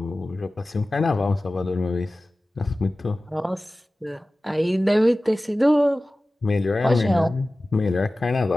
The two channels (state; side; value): normal; both; correlation 0.96